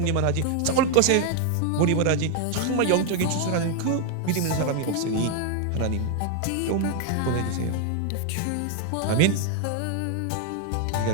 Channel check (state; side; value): different; both; correlation 0.00